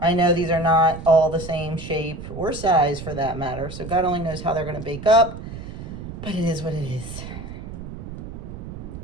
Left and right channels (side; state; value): right; noise; rumble, 10 dB below the sound